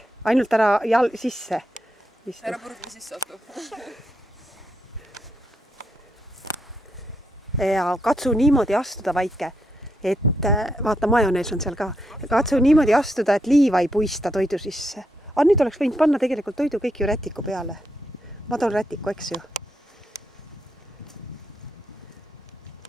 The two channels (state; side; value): normal; both; correlation 0.81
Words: Ainult ära sisse. Ära burgeri sisse atu. Ja katsu niimoodi astuda, Vaike, et vaata, majonees on seal ka. Katsu niimoodi astuda, et liiva ei puista toidu sisse. Aga nüüd oleks võinud panna tegelikult toidu kõik ju rätiku peale. Ma toon rätiku, eks ju.